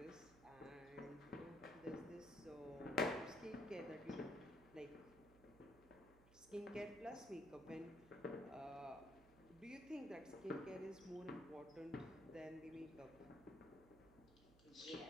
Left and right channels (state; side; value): noise; right; hum, 21 dB below the sound